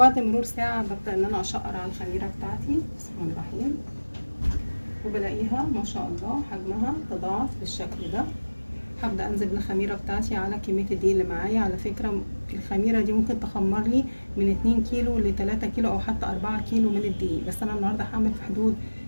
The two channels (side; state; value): both; inverted; correlation -1.00